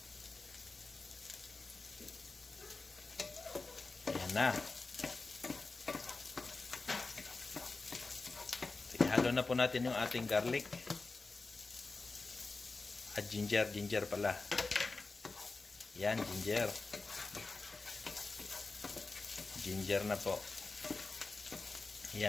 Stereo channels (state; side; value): quieter; right; 3.7 dB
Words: Ayan na. Ihalo na po natin yung ating garlic. At ginger pala. Yan, ginger. Ginger na po.